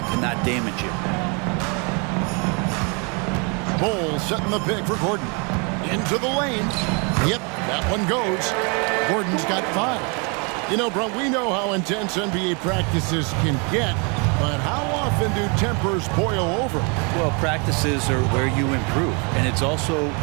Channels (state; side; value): quieter; left; 33.6 dB